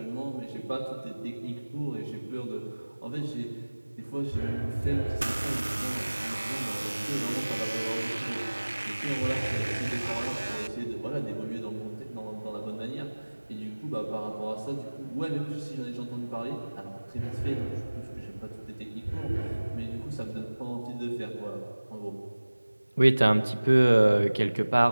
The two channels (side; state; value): both; inverted; correlation -1.00